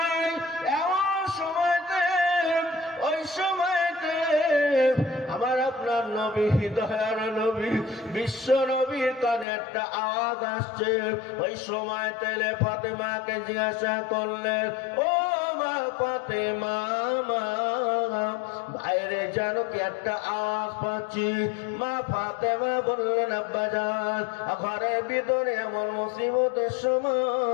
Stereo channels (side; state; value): right; drops out; at 9.5 s